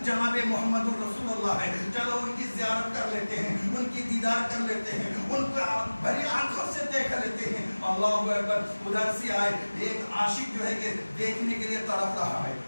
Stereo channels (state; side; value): inverted; both; correlation -1.00